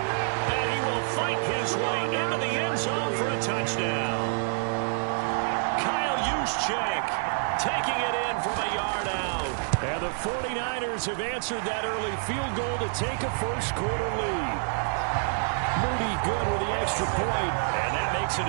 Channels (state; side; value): silent; left; 58 dB below the other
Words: he will fight his way into the end zone for a touchdown. Kyle Juszczyk taking it in from a yard out. And the 49ers have answered that early field goal to take a first-quarter lead. Moody good with the extra point, and that makes it